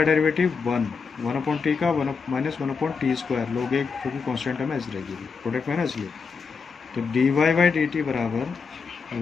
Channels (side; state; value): right; quieter; 5.3 dB